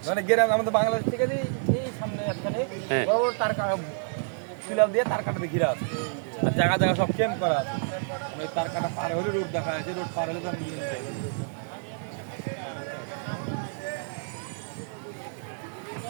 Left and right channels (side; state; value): left; silent; 59 dB below the other